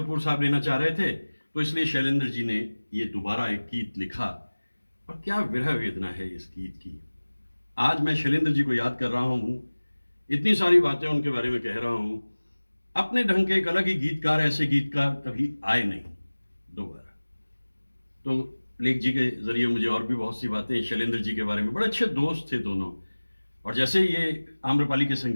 साहब लेना चाह रहे थे, तो इसलिए शैलेंद्र जी ने ये दोबारा एक गीत लिखा। और क्या विरह वेदना है इस गीत की। आज मैं शैलेंद्र जी को याद कर रहा हूं, इतनी सारी बातें उनके बारे में कह रहा हूं। अपने ढंग के एक अलग ही गीतकार, ऐसे गीतकार कभी आए नहीं दोबारा। तो लेख जी के जरिए मुझे और भी बहुत सी बातें शैलेंद्र जी के बारे में, बड़े अच्छे दोस्त थे दोनों। और जैसे ये आम्रपाली के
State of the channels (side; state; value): both; inverted; correlation -1.00